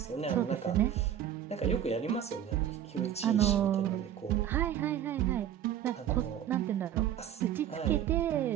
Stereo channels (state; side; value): quieter; left; 10.3 dB